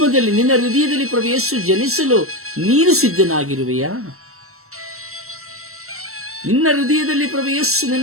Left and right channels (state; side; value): late; left; 0.63 ms